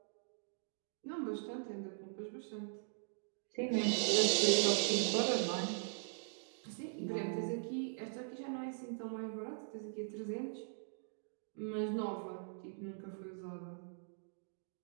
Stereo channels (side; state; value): left; silent; digital silence